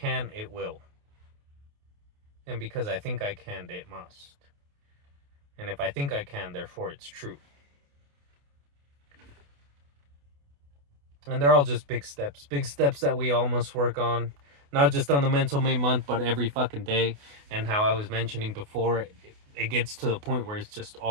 it will. And because I think I can, it must. And if I think I can, therefore it's true. And they're all just big steps that we all must work on, not just on the mental May month, but every fucking day. And how I was mentioning before, it gets to the point where it's just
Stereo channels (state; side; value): late; left; 28 ms